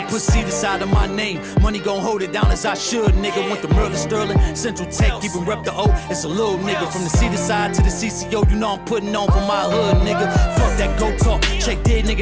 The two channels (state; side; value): identical; both; correlation 1.00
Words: Put CEDARSIDE on my name, money gon' hold it down as I should, nigga. Went to Merlin, Sterling, Central Tech, even rep the O. It's a little nigga from the CEDARSIDE to the CCO. You know I'm putting on for my hood, nigga. Fuck that go talk, check dead,